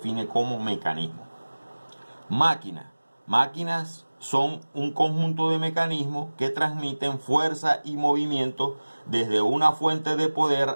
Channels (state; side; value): inverted; both; correlation -1.00